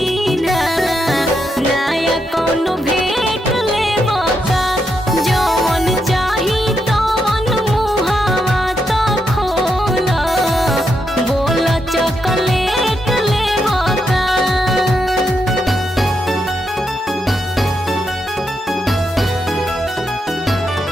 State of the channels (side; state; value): both; normal; correlation 0.82